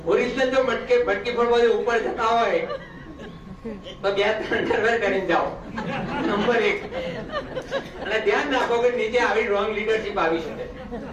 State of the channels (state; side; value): identical; both; correlation 1.00